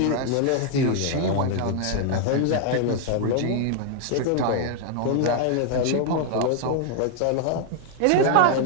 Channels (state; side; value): different; both; correlation 0.00